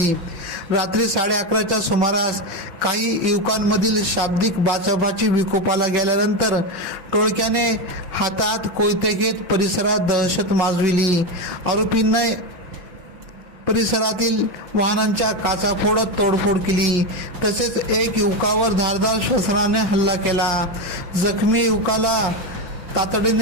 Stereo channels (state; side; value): late; left; 5.6 ms